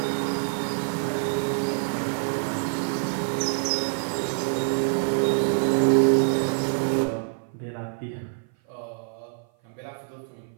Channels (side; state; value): left; silent; 55 dB below the other